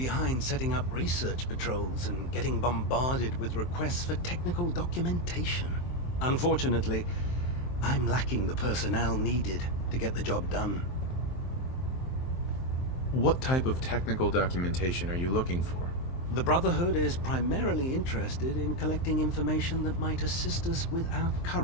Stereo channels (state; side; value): late; right; 23 ms